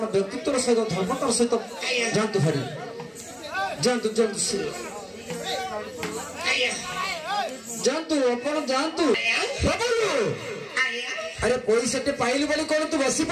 व्यक्तित्व सहित धर्मतार सहित जानतु हरि जानतु जानतु जानतु आपण जानतु प्रभु अरे पैसा टे पाइलु बोली कोन तू बसी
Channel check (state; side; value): identical; both; correlation 1.00